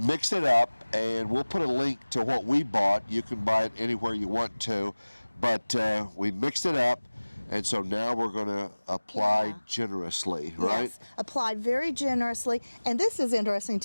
it up, and we'll put a link to what we bought. You can buy it anywhere you want to, but we mixed it up. And so now we're going to apply generously, right? Yes, applied very generously. And this is interesting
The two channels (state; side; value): inverted; both; correlation -1.00